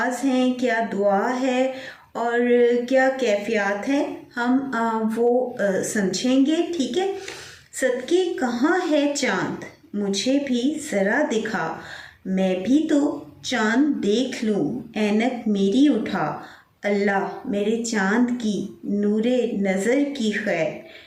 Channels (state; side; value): identical; both; correlation 1.00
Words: ہیں، کیا دعا ہے اور کیا کیفیات ہیں، ہم وہ سمجھیں گے۔ ٹھیک ہے، صدقے کہاں ہے چاند مجھے بھی ذرا دکھا، میں بھی تو چاند دیکھ لوں اینک میری اٹھا، اللہ میرے چاند کی نور نظر کی خیر،